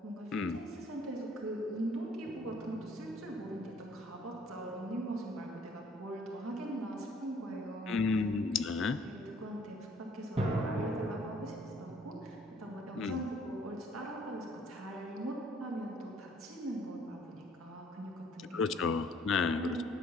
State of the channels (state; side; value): normal; both; correlation 0.60